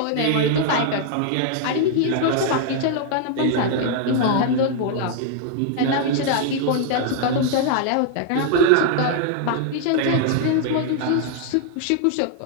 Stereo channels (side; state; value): both; different; correlation 0.00